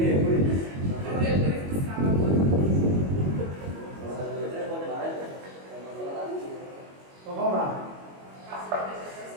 Então vamos lá.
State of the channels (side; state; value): left; late; 21 ms